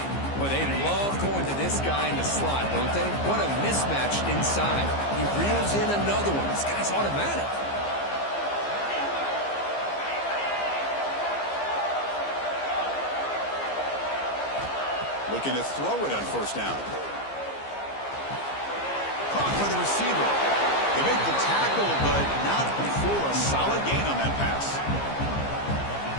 Well, they love going to this guy in the slot, don't they? What a mismatch inside. He reels in another one. This guy's automatic. Looking to throw it on first down. Caught by the receiver. They make the tackle, but not before a solid gain on that pass.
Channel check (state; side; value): late; right; 15 ms